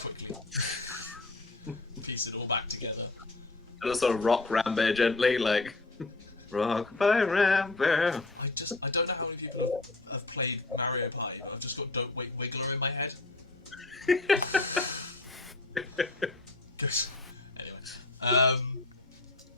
quickly piece it all back together. And just sort of rock Rambear gently, like, rock by Rambear. I don't know how many people have played Mario Party, but I've just got Don't Wait Wiggler in my head. Anyway.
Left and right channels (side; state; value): right; quieter; 3.1 dB